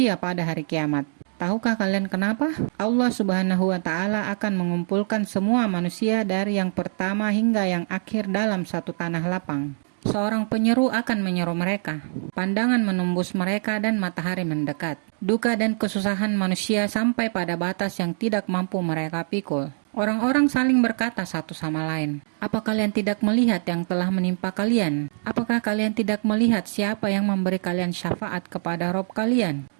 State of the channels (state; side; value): silent; left; digital silence